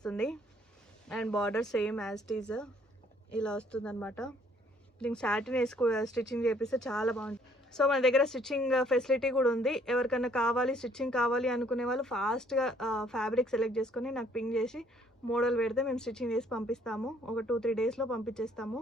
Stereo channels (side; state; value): both; normal; correlation 0.63